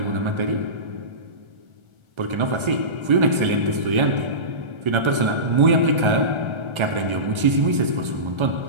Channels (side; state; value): left; late; 1.3 ms